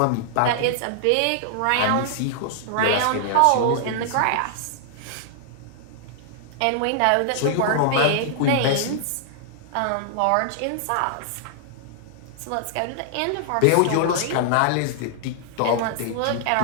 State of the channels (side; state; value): both; different; correlation -0.01